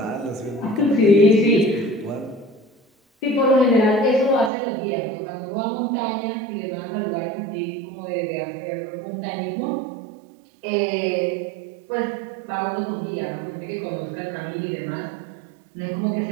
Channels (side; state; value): left; drops out; at 4.5 s